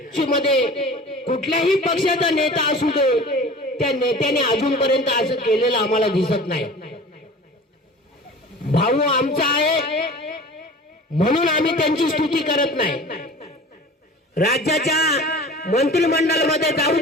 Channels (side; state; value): both; normal; correlation 0.40